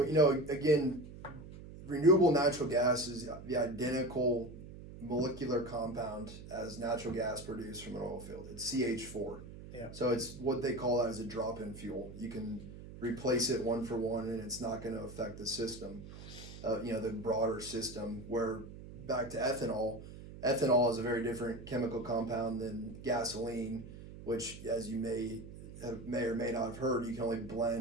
again, renewable natural gas is the identical molecular compound as natural gas produced from an oil field. It's CH4. Yeah. So it's what they call as a drop-in fuel. You can replace it one for one, and it's not going to affect the system, the broader system. Where back to ethanol, ethanol is a very different chemical compound than gasoline, which, as you may or may not have heard, you can only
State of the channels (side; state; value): right; noise; hum, 14 dB below the sound